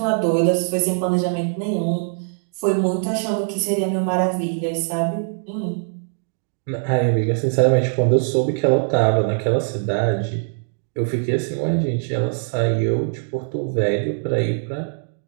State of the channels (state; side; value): silent; left; digital silence